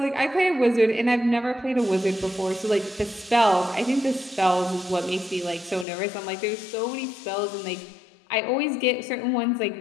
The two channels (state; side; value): drops out; right; at 5.9 s